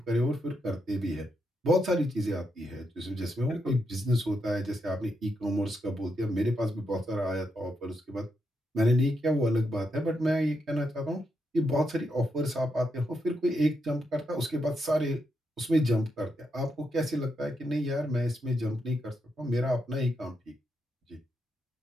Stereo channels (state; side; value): normal; both; correlation 0.82